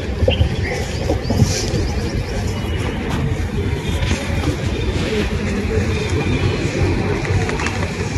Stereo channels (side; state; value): both; identical; correlation 1.00